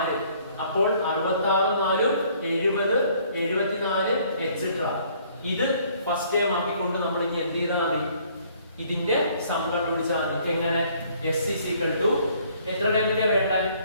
അപ്പോൾ 66 4 70 74 etc. ഇത് ഫസ്റ്റ് ടൈം ആക്കിക്കൊണ്ട് നമ്മൾ ഇനി എന്ത് ചെയ്താൽ മതി? ഇതിന്റെ സം കണ്ടുപിടിച്ചാൽ മതി. എങ്ങനെ? s is equal to എത്ര ടൈമിലെ വേണ്ട?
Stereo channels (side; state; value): both; inverted; correlation -0.60